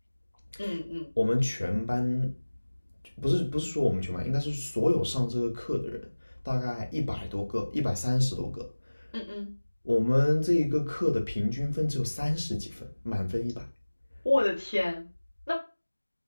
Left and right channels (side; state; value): both; inverted; correlation -1.00